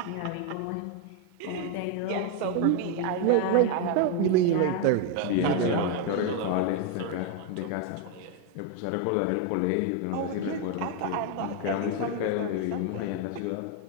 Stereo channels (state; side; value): different; both; correlation 0.01